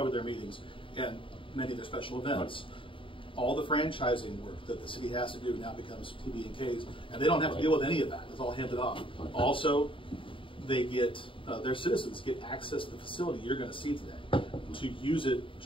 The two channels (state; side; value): late; right; 0.25 ms